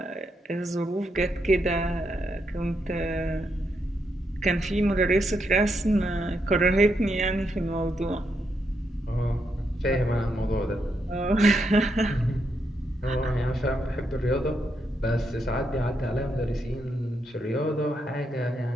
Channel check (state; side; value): normal; both; correlation 0.80